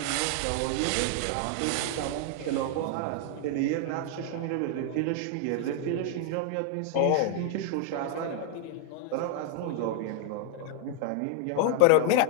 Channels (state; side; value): different; both; correlation 0.00